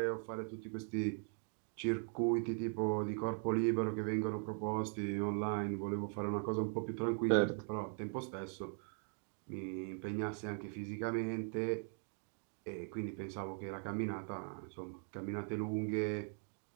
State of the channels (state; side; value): silent; left; 51 dB below the other